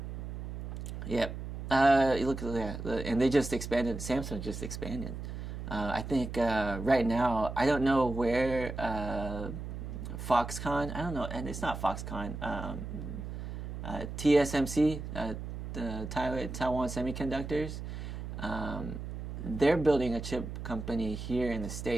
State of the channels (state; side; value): noise; right; hum, 7 dB below the sound